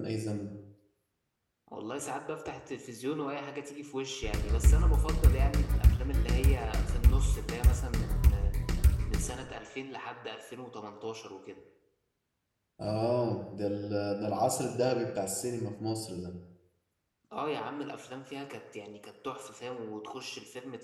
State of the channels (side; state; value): both; identical; correlation 1.00